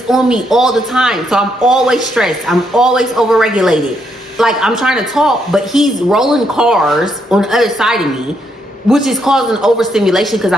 on me all the time. So I'm always stressed. I'm always overregulated. Like, I'm trying to talk, but he's rolling cars on the other side of me, which is causing overstimulation, because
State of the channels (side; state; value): both; normal; correlation 0.76